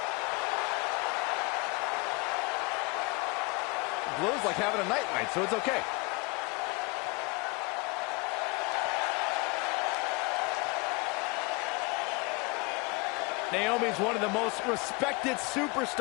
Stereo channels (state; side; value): quieter; right; 27.7 dB